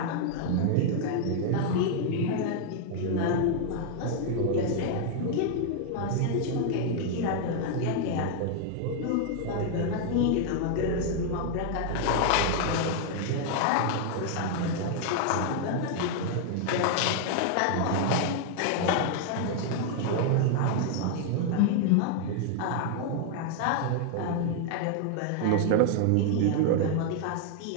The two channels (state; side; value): different; both; correlation 0.00